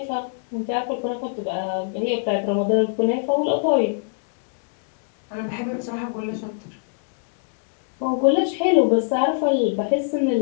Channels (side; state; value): right; silent; digital silence